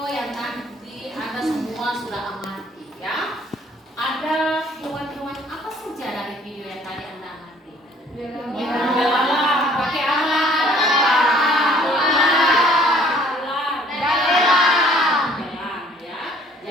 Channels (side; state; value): both; normal; correlation 0.58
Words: yang nanti Anda semua sudah amati ya. Ada hewan-hewan apa saja dari video yang tadi Anda amati? Belalang. Pakai apa? Belalang ya.